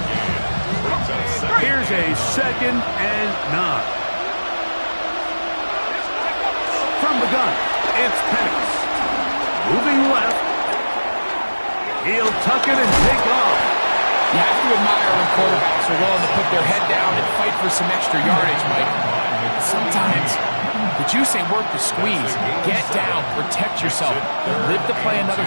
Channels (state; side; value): inverted; both; correlation -1.00